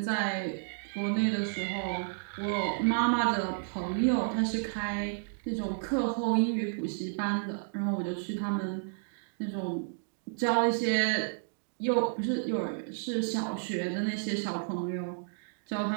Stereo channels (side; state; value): left; silent; digital silence